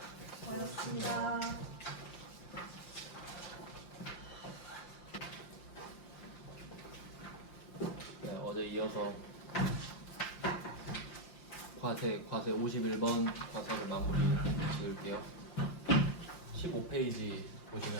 고맙습니다. 네, 어제 이어서 과세 51번 과세를 마무리 지을게요. 15페이지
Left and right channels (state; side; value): late; right; 5.7 ms